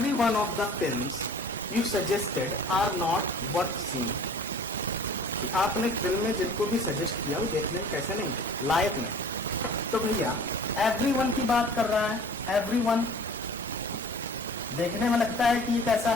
one of the films you suggested are not worth seeing, कि आपने फिल्म में जिनको भी सजेस्ट किया वो देखने में कैसे नहीं थे, लायक नहीं। तो भैया एवरी वन की बात कर रहा है, एवरी वन देखने में लगता है कि ये कैसा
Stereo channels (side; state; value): both; normal; correlation 0.47